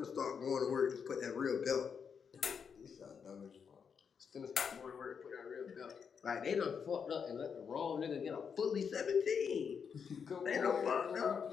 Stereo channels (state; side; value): quieter; right; 6.6 dB